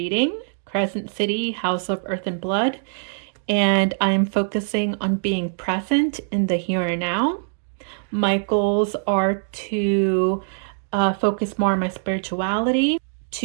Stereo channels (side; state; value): left; silent; digital silence